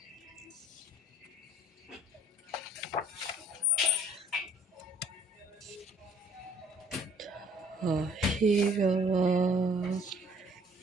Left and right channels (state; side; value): normal; both; correlation 0.57